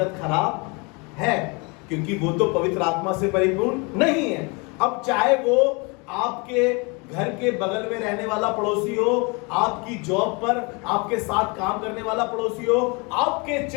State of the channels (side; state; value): right; quieter; 30.0 dB